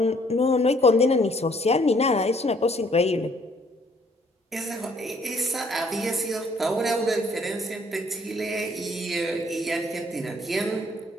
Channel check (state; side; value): normal; both; correlation 0.63